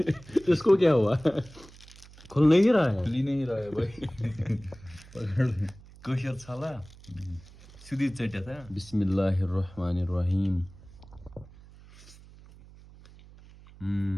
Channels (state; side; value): noise; right; hum, 21 dB below the sound